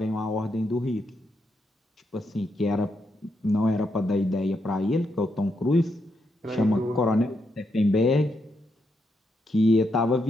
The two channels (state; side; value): normal; both; correlation 0.81